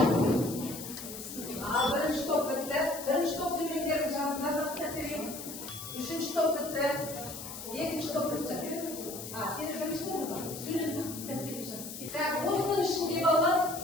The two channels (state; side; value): noise; left; hiss, 10 dB below the sound